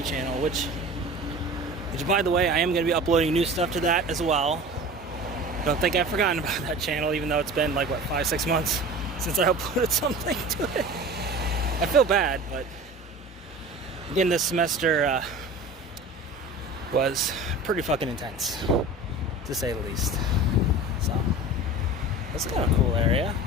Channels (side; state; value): both; normal; correlation 0.37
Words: channel, which by the way, I am going to be uploading new stuff to that as well. Don't think I've forgotten about that channel, even though it's been like, what, 5-6 months since I uploaded something to it. I feel bad, but again, this semester was pretty fucking intense, to say the least. So, that's kind of a cool area.